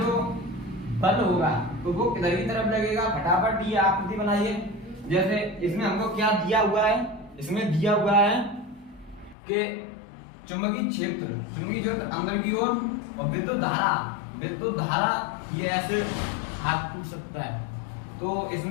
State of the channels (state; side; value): drops out; right; at 9.3 s